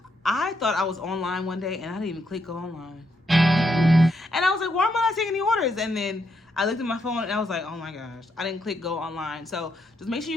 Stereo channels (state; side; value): normal; both; correlation 0.78